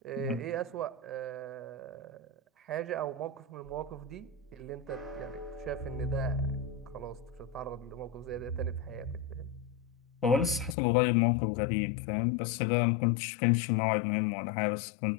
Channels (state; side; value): drops out; right; at 10.8 s